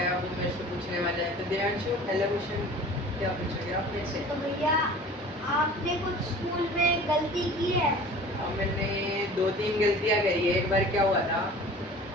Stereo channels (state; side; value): normal; both; correlation 0.43